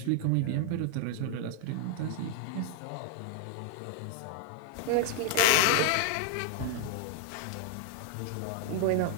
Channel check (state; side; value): different; both; correlation 0.00